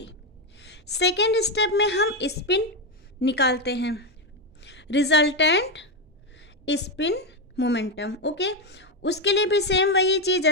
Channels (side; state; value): both; normal; correlation 0.09